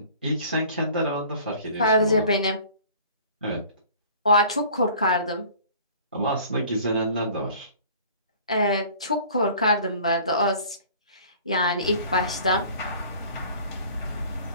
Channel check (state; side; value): inverted; both; correlation -0.48